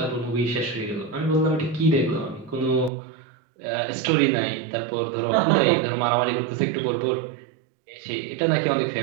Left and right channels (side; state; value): left; drops out; at 2.9 s